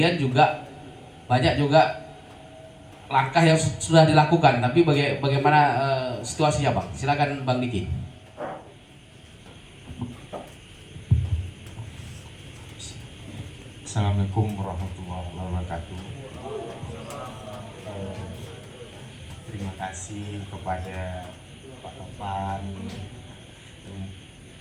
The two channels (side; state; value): both; identical; correlation 1.00